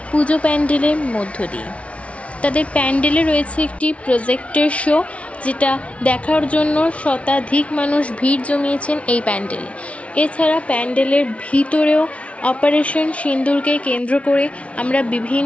পুজো প্যান্ডেলের মধ্য দিয়ে। তাদের প্যান্ডেলে রয়েছে একটি প্রজেক্টর শো, যেটা দেখার জন্য শতাধিক মানুষ ভিড় জমিয়েছেন এই প্যান্ডেলে। এছাড়া প্যান্ডেলের ভিতরেও অপারেশন সিঁদুরকে কেন্দ্র করে আমরা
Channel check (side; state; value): right; late; 0.063 ms